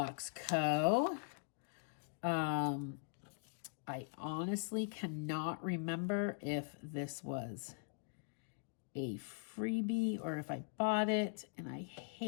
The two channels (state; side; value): silent; right; digital silence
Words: Co. I honestly cannot remember if this was a freebie or if I bought it, and I